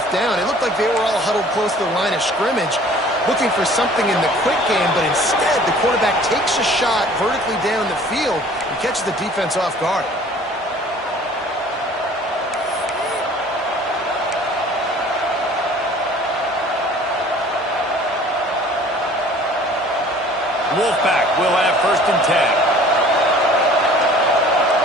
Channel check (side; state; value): both; normal; correlation 0.50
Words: down. It looked like they were all huddled close to the line of scrimmage, looking for something in the quick game, but instead the quarterback takes a shot vertically down the field and catches the defense off guard. Wolfpack will have first and 10.